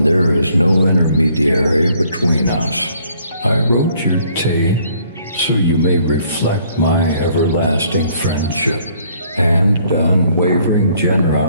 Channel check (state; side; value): inverted; both; correlation -0.63